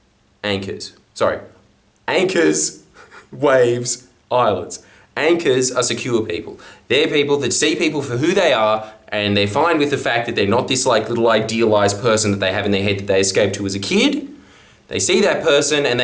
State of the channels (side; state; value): both; identical; correlation 1.00